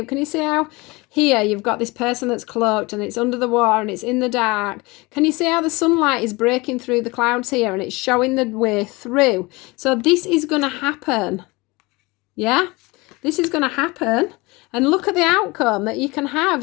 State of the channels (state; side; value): quieter; right; 24.0 dB